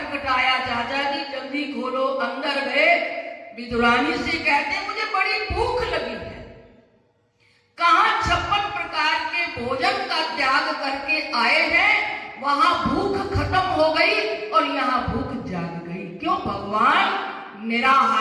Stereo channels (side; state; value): both; identical; correlation 1.00